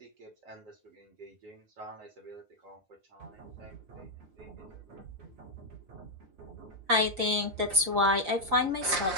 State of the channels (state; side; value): late; left; 5.5 ms